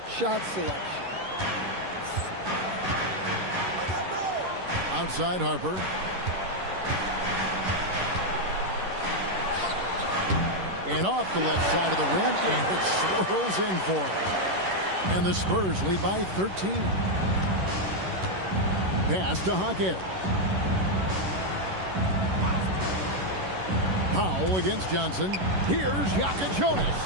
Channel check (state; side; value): late; left; 11 ms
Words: shot selection. Outside Harper. And off the left side of the rim, and it swirls in for him. And the Spurs lead by 13. Pass to Hawkins. Powell against Johnson. Here's Jonas.